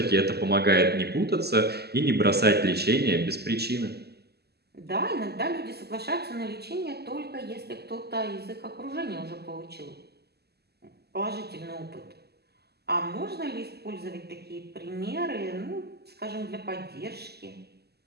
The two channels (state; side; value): late; left; 0.47 ms